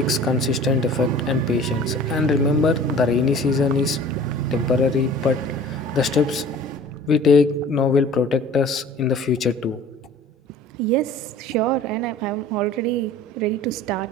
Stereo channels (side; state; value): both; normal; correlation 0.45